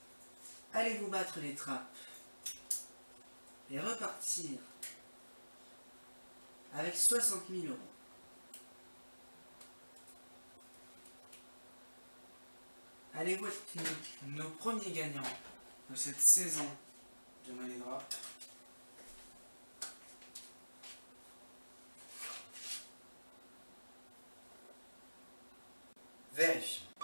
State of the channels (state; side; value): inverted; both; correlation -1.00